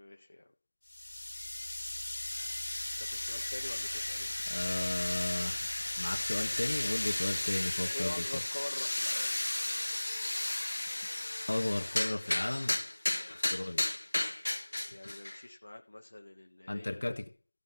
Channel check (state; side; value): inverted; both; correlation -1.00